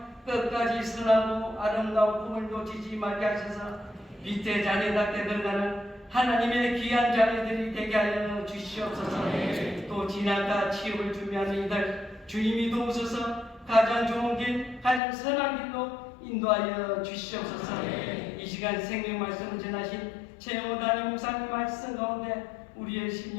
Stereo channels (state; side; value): drops out; right; at 15.0 s